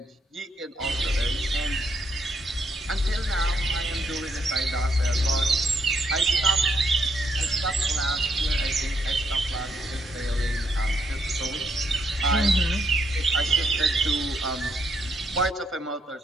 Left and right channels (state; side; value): normal; both; correlation 0.74